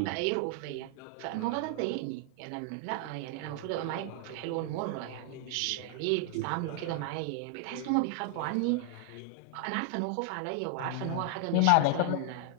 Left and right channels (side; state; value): both; different; correlation 0.00